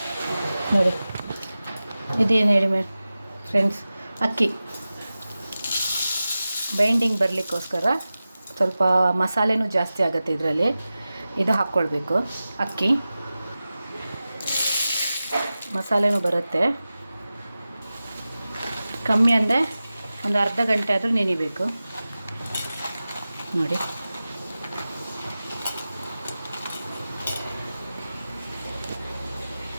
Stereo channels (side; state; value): both; inverted; correlation -0.95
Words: ನೋಡಿ. ಇದೇನು ಹೇಳಿ ಫ್ರೆಂಡ್ಸ್, ಅಕ್ಕಿ ಬೈಂಡಿಂಗ್ ಬರಲಿಕ್ಕೋಸ್ಕರ ಸ್ವಲ್ಪ ಮಸಾಲೆನೂ ಜಾಸ್ತಿ ಆಗುತ್ತೆ ಇದರಲ್ಲಿ. ಇದು ಹಾಕ್ಕೊಳ್ಬೇಕು, ಅಕ್ಕಿ ಮಸಾಲೆನೂ ಬರುತ್ತೆ. ಕಮ್ಮಿ ಅಂದರೆ ಒಂದು ಅರ್ಧ ಗಂಟೆ ಆದರೂ ನೆನಿಬೇಕು ನೋಡಿ.